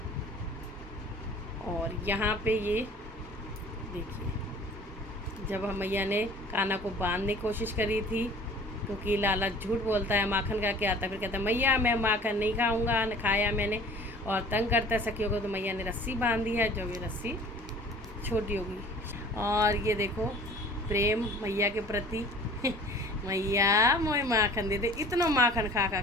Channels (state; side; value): normal; both; correlation 0.47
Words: और यहाँ पे ये देखिए, जब मैया ने कान्हा को बांधने की कोशिश करी थी, क्योंकि लाला झूठ बोलता है, माखन खा के आता है, फिर कहता है मैया मैं माखन नहीं खाऊंगा, न खाया मैंने, और तंग करता है सखियों को। तो मैया ने रस्सी बांध दी है, जो भी रस्सी छोटी होगी। और ये देखो प्रेम मैया के प्रति मैया मोए माखन दे दे, इतना माखन खा खा